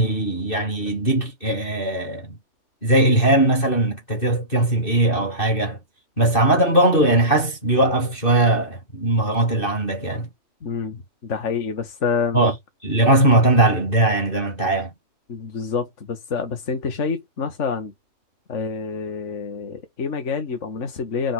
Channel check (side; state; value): right; late; 2.6 ms